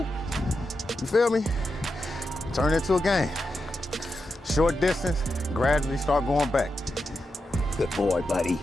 You feel me? Turn it into a game. Short distance, gradually start going back. Good boy, buddy.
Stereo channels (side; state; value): both; normal; correlation 0.88